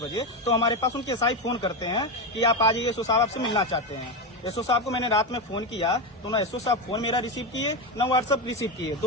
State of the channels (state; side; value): normal; both; correlation 0.13